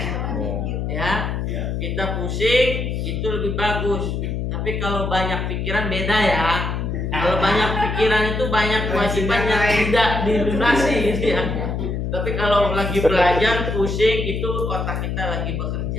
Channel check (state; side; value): noise; left; hum, 2 dB below the sound